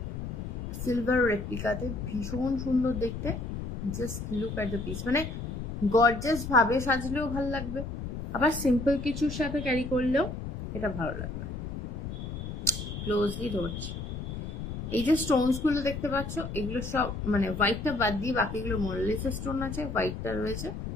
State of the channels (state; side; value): noise; left; rumble, 6 dB below the sound